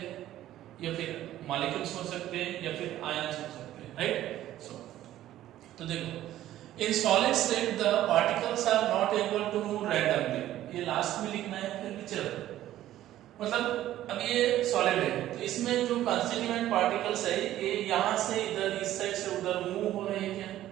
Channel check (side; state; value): left; quieter; 13.4 dB